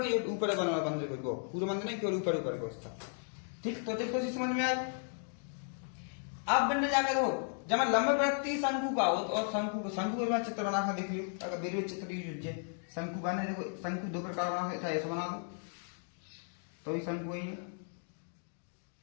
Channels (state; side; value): silent; right; 54 dB below the other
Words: के ऊपर बना हुआ मंदिर को, पूरा मंदिर नहीं केवल ऊपर ऊपर को उसका। ठीक, तो देखो समझ में आए। अब बनने जाकर हो जब मैं लंबवृत्तीय शंकु का हो और शंकु का चित्र बना कर देख लियो, अगर मेरे चित्र यूज है शंकु बने देखो, शंकु दो प्रकार बना था, ऐसा बना दो तो भी शंकु वही है,